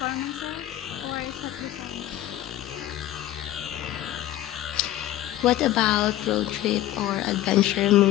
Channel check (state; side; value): quieter; right; 14.0 dB